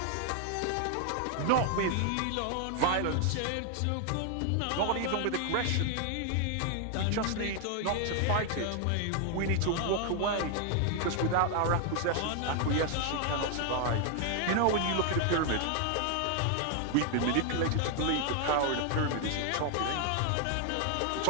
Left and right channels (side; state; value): both; different; correlation 0.00